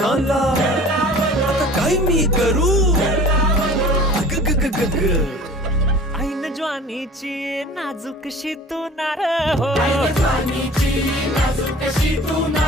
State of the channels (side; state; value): both; normal; correlation 0.45